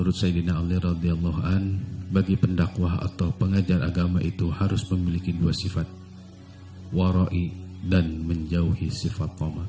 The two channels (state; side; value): identical; both; correlation 1.00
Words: Sayyidina Ali radhiyallahu an, bagi pendakwah atau pengajar agama itu harus memiliki dua sifat, wara'i dan menjauhi sifat toma.